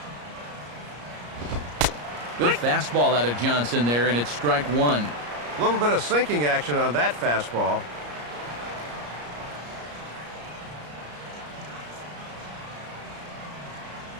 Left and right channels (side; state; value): left; late; 34 ms